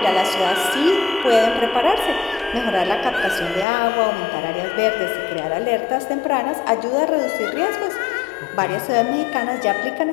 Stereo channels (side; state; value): right; drops out; at 3.7 s